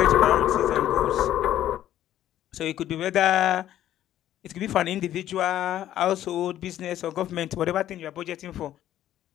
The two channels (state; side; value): quieter; right; 12.3 dB